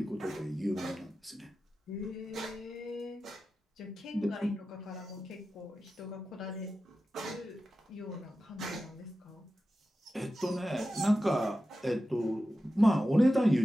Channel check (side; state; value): both; normal; correlation 0.93